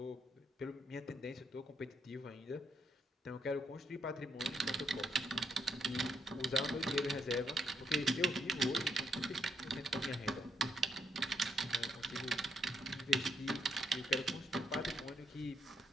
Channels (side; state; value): both; normal; correlation 0.76